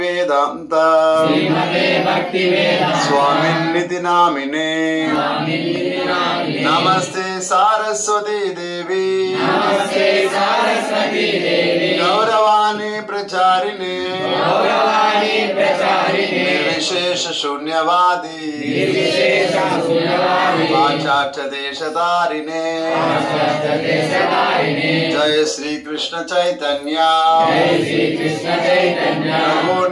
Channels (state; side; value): identical; both; correlation 1.00